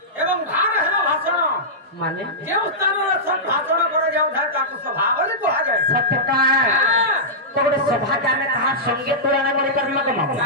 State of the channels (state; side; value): normal; both; correlation -0.12